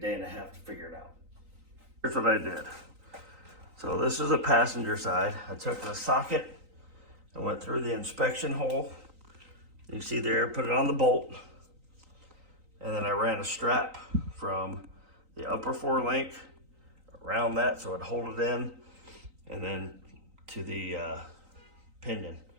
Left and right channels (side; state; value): left; late; 3.9 ms